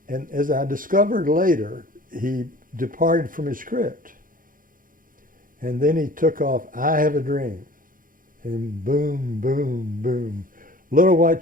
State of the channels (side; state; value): left; late; 0.40 ms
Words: And as I discovered later, he departed from his script. And then he took off, I Have a Dream. And boom, boom, boom. Little white